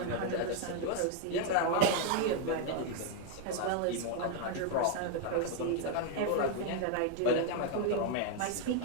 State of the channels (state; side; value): different; both; correlation 0.00